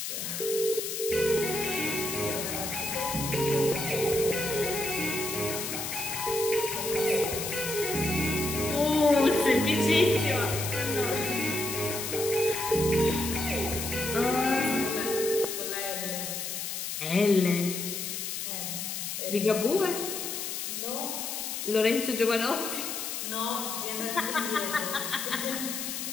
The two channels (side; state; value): left; noise; hiss, 4 dB below the sound